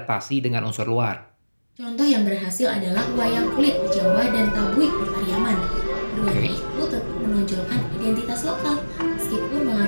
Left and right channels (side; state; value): both; inverted; correlation -1.00